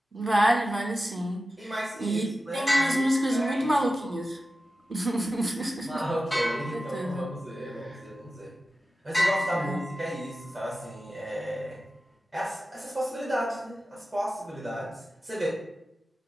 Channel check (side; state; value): both; normal; correlation 0.94